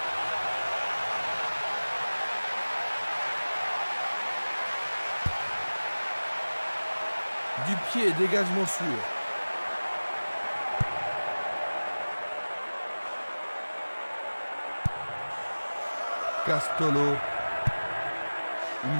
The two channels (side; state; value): both; inverted; correlation -1.00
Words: Du pied, dégagement sûr. Castolo.